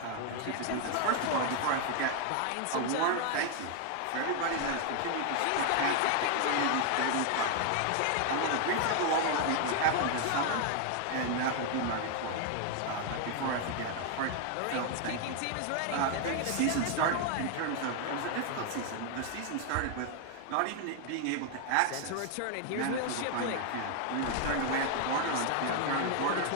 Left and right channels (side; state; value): both; different; correlation 0.00